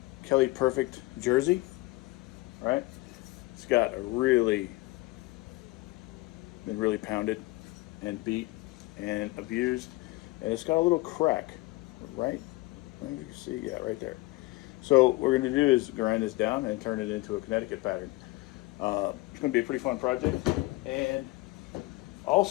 Kelly Perfect jersey, right? It's got a been really pounded and beat and abused, and it's got a little crack, right? You can see, yeah, right there. So what we're going to do is grind this down and turn it into a Connecticut pattern. It's going to be a pretty fun project. And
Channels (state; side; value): quieter; right; 21.3 dB